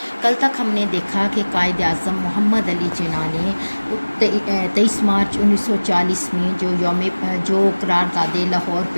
کل تک ہم نے دیکھا کہ قائد اعظم محمد علی جناح نے 23 مارچ 1940 میں جو قرارداد لاہور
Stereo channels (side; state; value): both; inverted; correlation -1.00